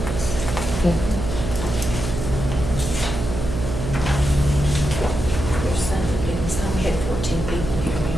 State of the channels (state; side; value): noise; right; hum, 4 dB below the sound